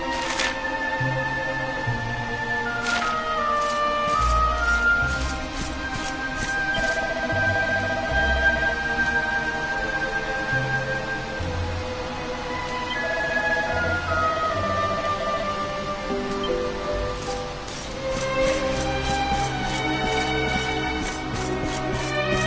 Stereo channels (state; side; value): identical; both; correlation 1.00